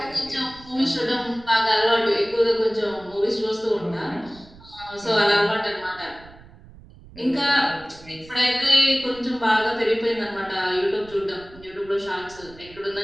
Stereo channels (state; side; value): noise; right; rumble, 22 dB below the sound